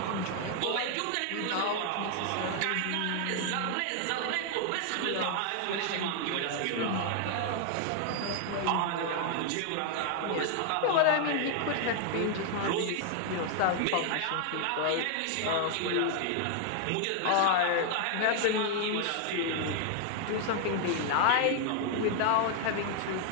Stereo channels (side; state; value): both; different; correlation 0.00